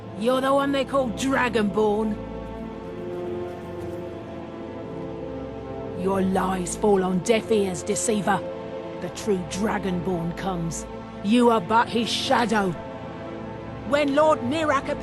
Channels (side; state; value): both; identical; correlation 1.00